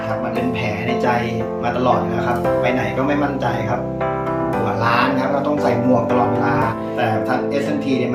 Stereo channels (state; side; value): identical; both; correlation 1.00